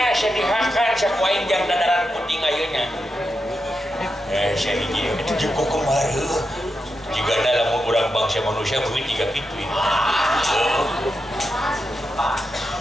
sedihakan sakuain jam dadaran putih ngayunya saya hiji itu juga kemarin jika dalam kurang bangsa manusia mungkin tiga gitu ini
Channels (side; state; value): both; normal; correlation 0.87